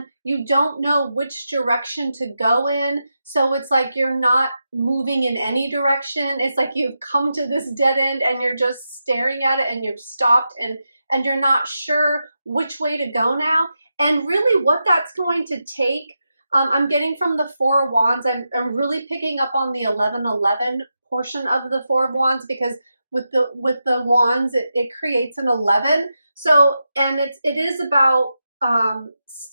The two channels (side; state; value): both; inverted; correlation -0.88